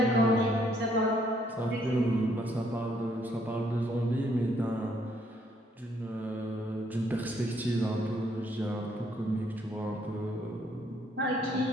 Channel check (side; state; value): both; normal; correlation 0.68